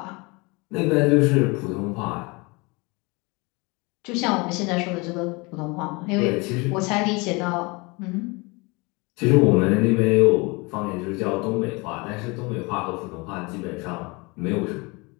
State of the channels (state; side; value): quieter; right; 26.9 dB